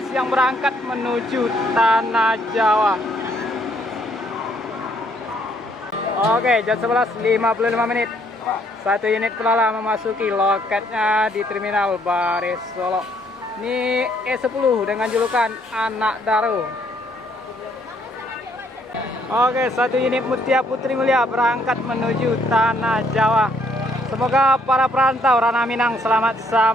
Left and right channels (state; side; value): normal; both; correlation 0.68